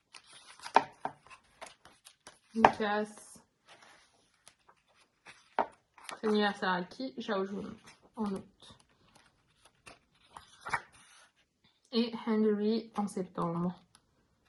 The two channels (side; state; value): both; identical; correlation 1.00